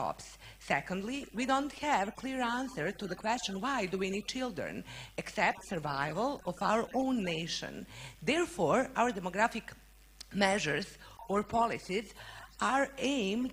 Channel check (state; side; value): identical; both; correlation 1.00